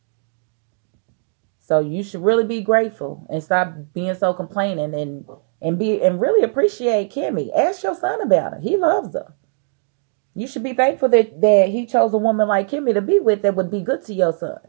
So you should really be grateful and stop being so complaining, and really appreciate Kimmy. Ask your son about her. He loves her. You should be thankful that he chose a woman like Kimmy to be with that would be good to your son.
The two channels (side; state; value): left; silent; digital silence